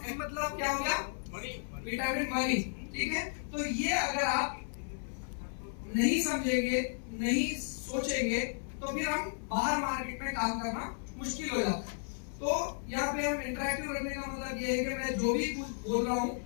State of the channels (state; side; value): silent; right; 55 dB below the other